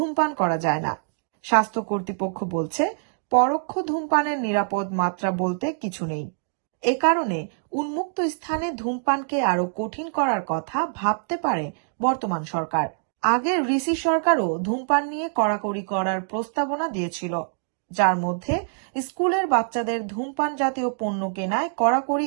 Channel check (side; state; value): left; silent; digital silence